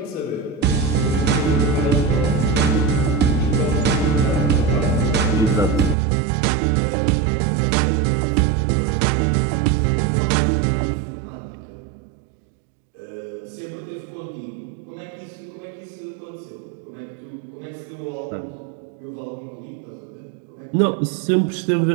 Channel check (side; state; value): left; drops out; at 6.0 s